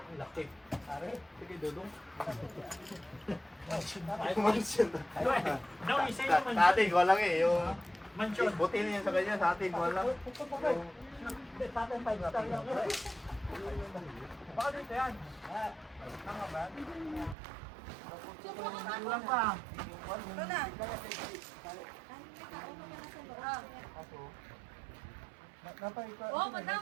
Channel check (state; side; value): drops out; left; at 17.4 s